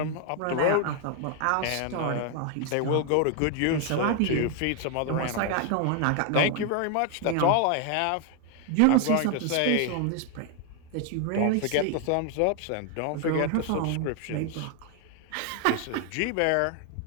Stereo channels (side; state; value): both; different; correlation 0.00